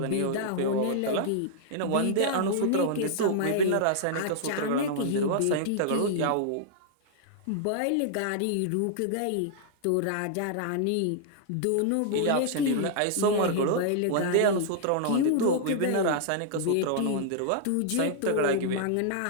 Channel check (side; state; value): both; different; correlation -0.01